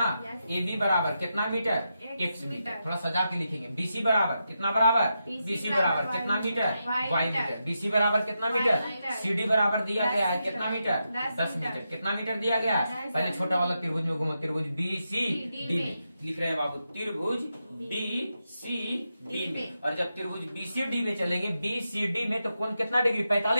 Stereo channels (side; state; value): both; inverted; correlation -0.86